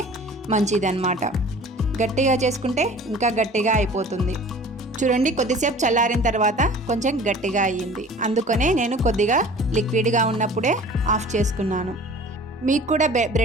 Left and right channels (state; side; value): normal; both; correlation 0.45